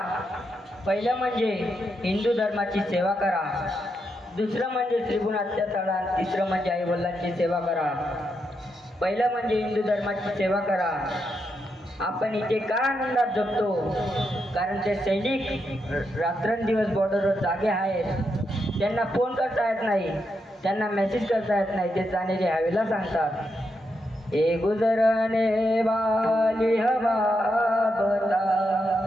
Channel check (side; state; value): both; normal; correlation 0.83